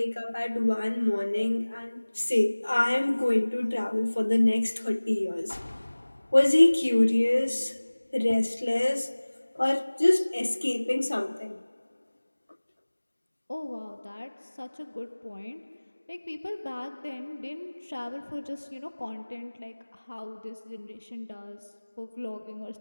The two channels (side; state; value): both; inverted; correlation -1.00